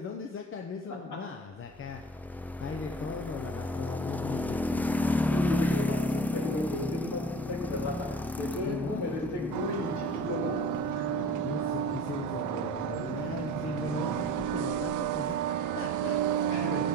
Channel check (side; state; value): both; normal; correlation 0.41